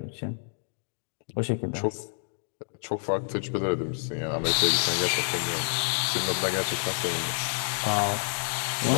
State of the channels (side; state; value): right; silent; digital silence